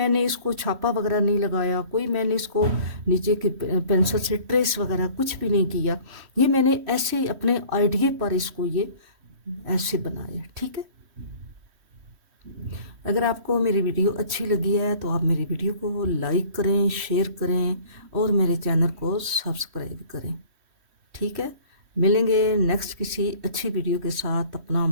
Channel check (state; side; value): late; left; 3.1 ms